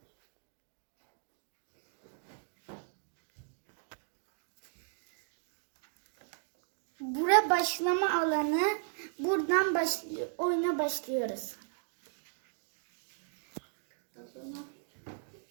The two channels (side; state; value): left; silent; digital silence